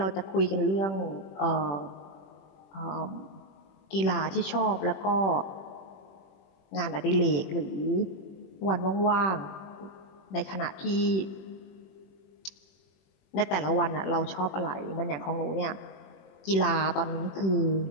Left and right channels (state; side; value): late; right; 21 ms